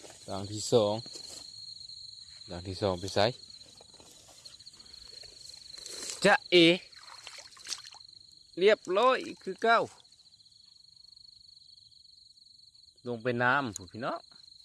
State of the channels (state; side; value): identical; both; correlation 1.00